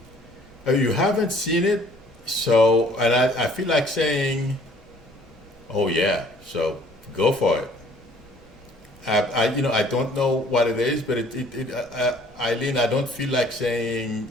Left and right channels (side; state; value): both; normal; correlation 0.56